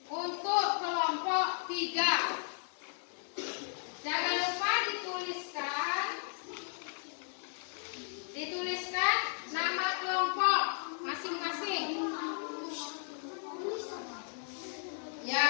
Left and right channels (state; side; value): silent; right; 54 dB below the other